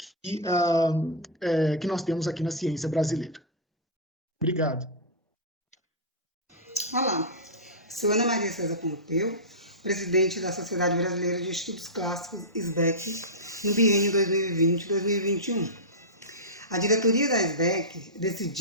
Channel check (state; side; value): normal; both; correlation -0.12